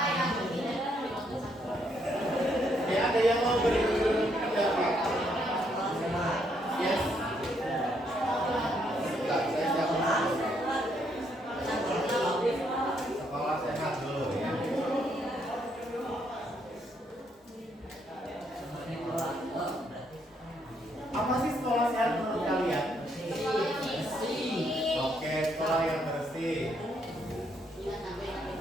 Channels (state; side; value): normal; both; correlation 0.73